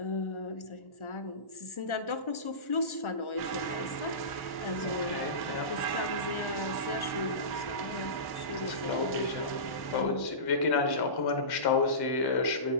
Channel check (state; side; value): late; right; 1.1 ms